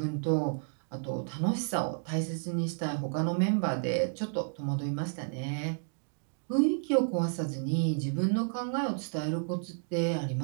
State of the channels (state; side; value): silent; left; digital silence